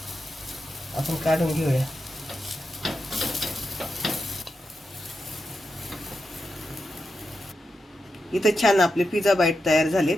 आपण काढून घेऊया. इथं छान आपले पिझ्झा बाईट तयार झालेत.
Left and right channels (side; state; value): both; normal; correlation 0.88